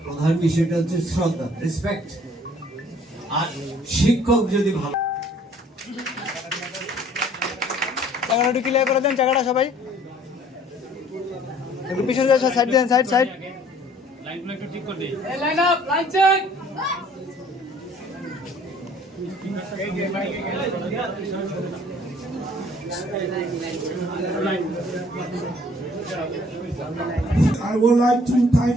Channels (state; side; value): normal; both; correlation 0.56